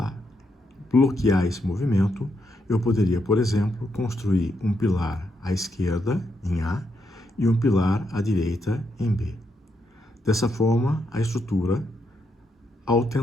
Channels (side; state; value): both; normal; correlation 0.80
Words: bloquear esse movimento, eu poderia, por exemplo, construir um pilar à esquerda, em A, e um pilar à direita, em B. Dessa forma, a estrutura, ao